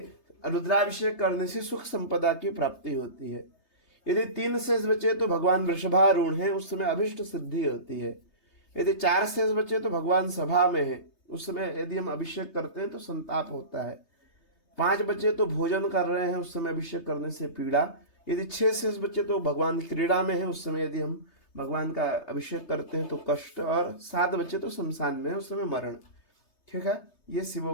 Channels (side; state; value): right; late; 3.3 ms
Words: रुद्राभिषेक करने से सुख संपदा की प्राप्ति होती है। यदि 3 शेष बचे तो भगवान वृषभारूढ़ हैं, उस समय अभिष्ट सिद्धि होती है। यदि 4 शेष बचे तो भगवान सभा में है, उस समय यदि हम अभिषेक करते हैं तो संताप होता है। 5 बचे तो भोजन कर रहे हैं, उस समय अभिषेक करने से पीड़ा। यदि 6 शेष बचे तो भगवान क्रीड़ा में है, उस समय यदि हम भगवान का अभिषेक करते हैं तो कष्ट, और 7 बचे तो शमशान में है, उस समय मरण। ठीक है, ये